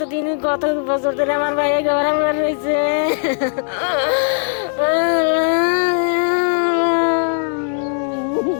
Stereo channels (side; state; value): right; silent; digital silence